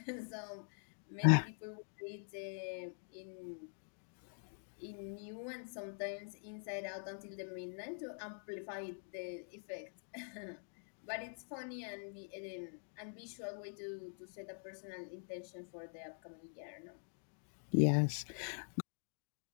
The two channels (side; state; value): right; silent; digital silence